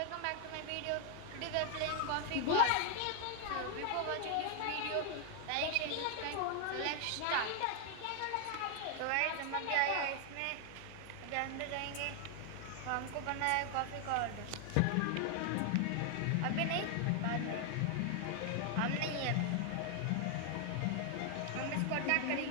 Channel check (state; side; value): different; both; correlation 0.00